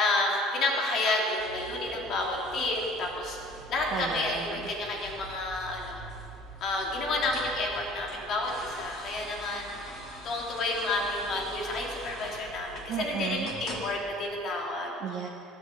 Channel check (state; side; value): normal; both; correlation 0.50